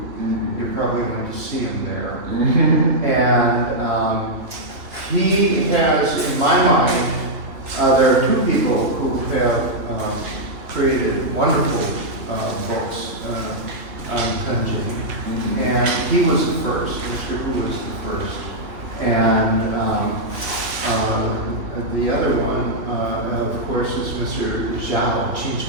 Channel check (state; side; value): late; left; 3.1 ms